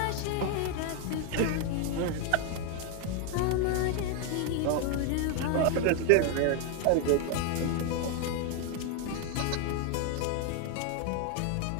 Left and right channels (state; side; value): different; both; correlation 0.01